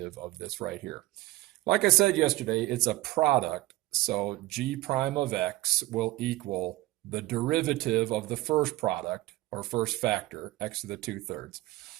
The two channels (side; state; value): left; quieter; 18.0 dB